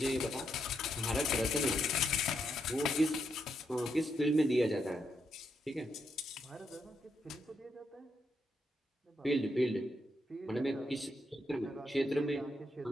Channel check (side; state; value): both; normal; correlation 0.80